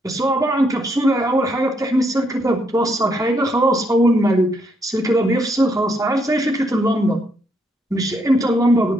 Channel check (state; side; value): normal; both; correlation 0.75